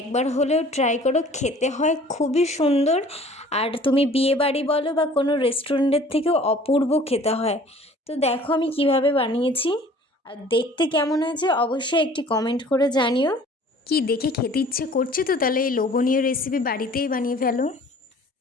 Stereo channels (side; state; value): both; normal; correlation 0.50